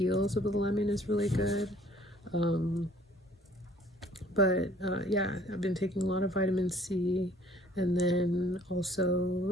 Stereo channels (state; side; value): normal; both; correlation 0.56